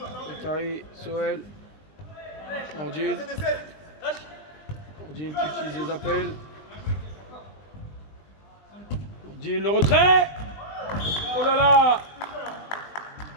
Bakary, Soel. Nordine. Nordine qui utilise les appels. Nordine, le retrait. Oh là là.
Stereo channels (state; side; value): late; right; 20 ms